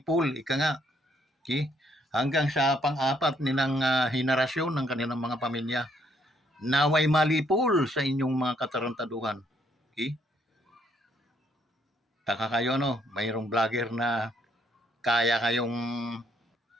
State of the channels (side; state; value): both; normal; correlation 0.69